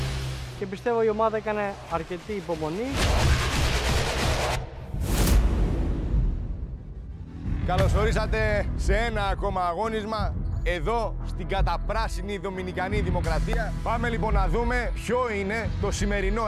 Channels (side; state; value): both; identical; correlation 1.00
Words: Και πιστεύω η ομάδα έκανε αρκετή υπομονή. Καλώς ορίσατε σε ένα ακόμα αγώνισμα εδώ στην καταπράσινη Δομινικανή Δημοκρατία. Πάμε λοιπόν να δούμε ποιο είναι το